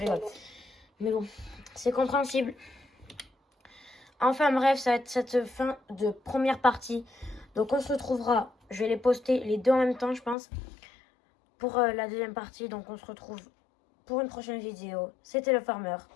Mais bon, c'est compréhensible. Enfin bref, ça va être cette fin de première partie. Donc on se retrouvera, je vais les poster les deux en même temps je pense, pour la deuxième partie. Donc on se retrouve pour une prochaine vidéo. C'était le Farmer.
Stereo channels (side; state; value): right; drops out; at 10.4 s